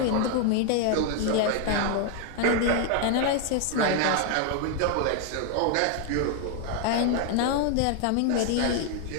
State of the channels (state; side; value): different; both; correlation 0.00